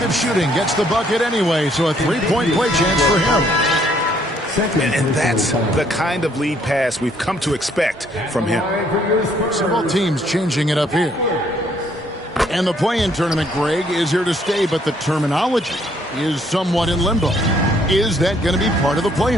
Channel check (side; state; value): both; normal; correlation 0.66